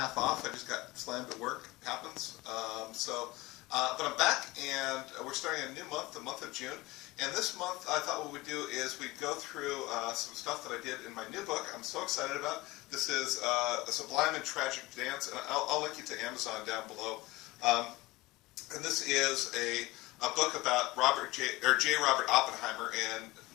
off. I just got slammed at work. It happens. But I'm back, and we're starting a new month, the month of June. And this month, I thought what we'd do is we'd go through some stuff that I did in my new book. I'm so excited about. This is A Sublime and Tragic Dance, and I'll link you to Amazon down below. And this is a book about J. Robert Oppenheimer and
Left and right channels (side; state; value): right; quieter; 20.2 dB